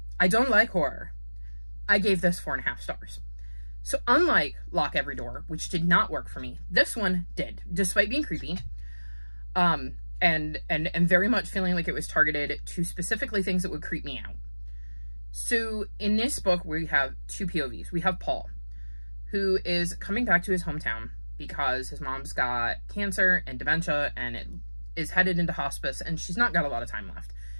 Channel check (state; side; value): inverted; both; correlation -1.00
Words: I don't like horror. I gave this 4.5 stars. So unlike Lock Every Door, which did not work for me, this one did, despite being creepy, and very much feeling like it was targeted to specifically things that would creep me out. So in this book, we have two POVs. We have Paul, who is coming back to his hometown because his mom's got cancer and dementia, and it is headed into hospice, and she's not got a lot of time left.